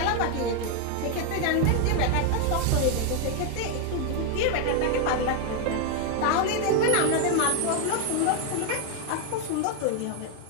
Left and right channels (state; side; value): different; both; correlation 0.01